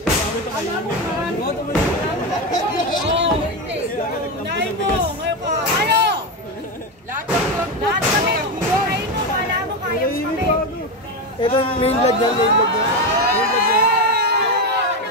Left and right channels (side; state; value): both; normal; correlation 0.14